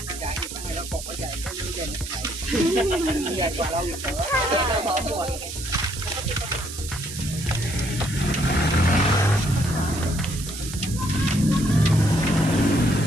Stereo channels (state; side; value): noise; right; hiss, 10 dB below the sound